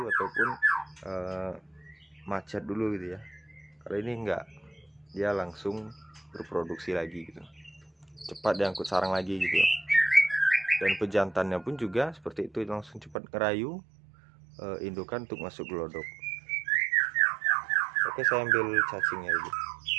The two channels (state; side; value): drops out; left; at 13.2 s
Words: ataupun macet dulu gitu ya. Kalau ini enggak, dia langsung berproduksi lagi gitu, cepat diangkut sarang lagi gitu. Dan pejantannya pun juga seperti itu, langsung cepat ngerayu indukan untuk masuk gelodok. Oke, saya ambil cacingnya dulu.